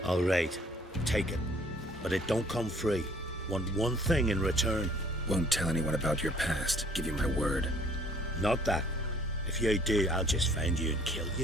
All right, take it. But it don't come free. Want one thing in return. Won't tell anyone about your past, give you my word. Not that. If you do, I'll just find you and kill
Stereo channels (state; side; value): normal; both; correlation 0.58